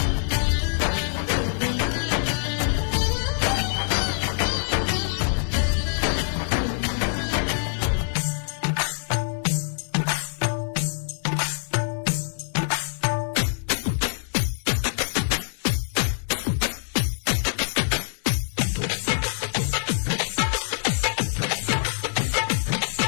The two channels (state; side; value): silent; right; digital silence